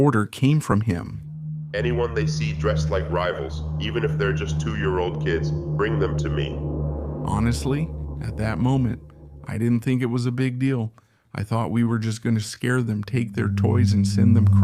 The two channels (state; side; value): identical; both; correlation 1.00